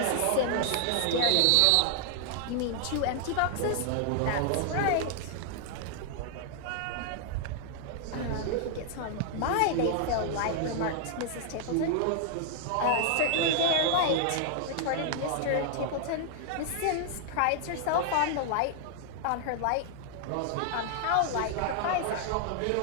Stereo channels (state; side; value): different; both; correlation 0.00